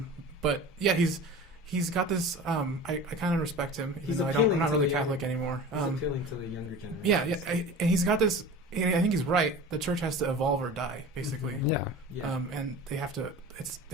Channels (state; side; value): normal; both; correlation 0.36